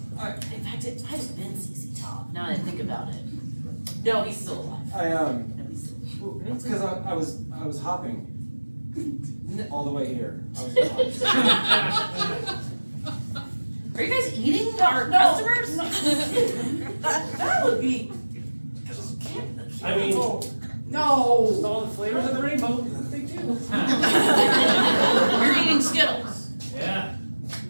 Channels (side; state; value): both; inverted; correlation -1.00